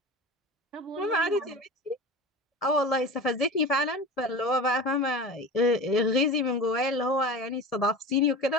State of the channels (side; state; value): both; normal; correlation 0.31